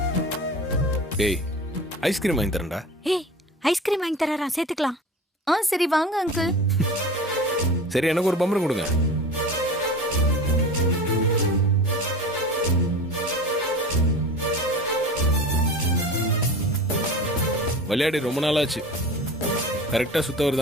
டேய், ஐஸ்கிரீம் வாங்கி தரேன்டா. ஏய், ஐஸ்கிரீம் வாங்கி தரறா, சேர்த்துக்கலாம். சரி வாங்க அங்கிள். சரி, எனக்கு ஒரு பம்பரம் கொடுங்க. விளையாடி ரொம்ப நாளாச்சு. கரெக்டா சுத்த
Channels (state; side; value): normal; both; correlation 0.34